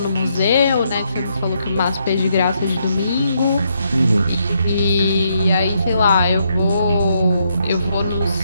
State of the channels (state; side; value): inverted; both; correlation -0.76